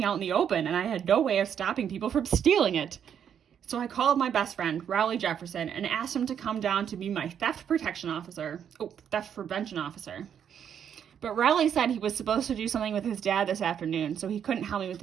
out in the open, and I had no way of stopping people from stealing it. So I called my best friend, Rowley Jefferson, and asked him to come down to be my theft prevention officer. But Rowley said he was supposed to do something with his dad this afternoon, so he couldn't help me with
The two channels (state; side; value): quieter; left; 8.5 dB